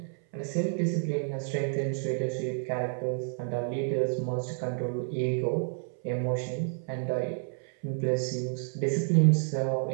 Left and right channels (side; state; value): left; silent; 58 dB below the other